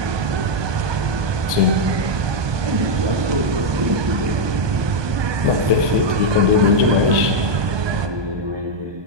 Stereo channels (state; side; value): late; left; 1.2 ms